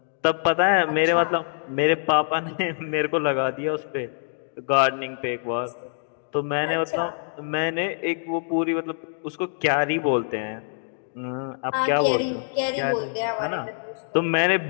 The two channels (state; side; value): silent; right; digital silence